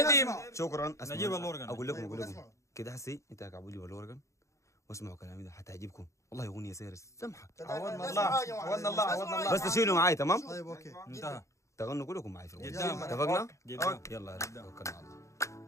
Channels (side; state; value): right; late; 0.15 ms